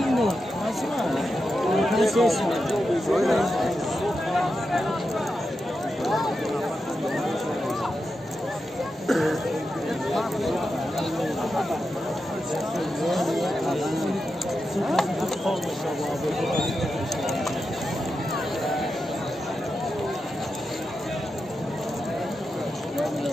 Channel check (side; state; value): both; normal; correlation 0.89